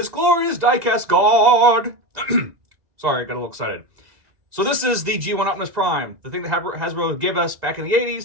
glorious diecast god! Sorry, I got a little excited. So this is the G1 Optimus Prime, the thing that Hasbro gave us back in the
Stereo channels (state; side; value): late; left; 1.9 ms